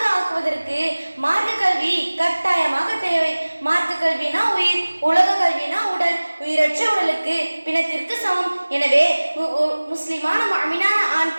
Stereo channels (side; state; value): both; inverted; correlation -1.00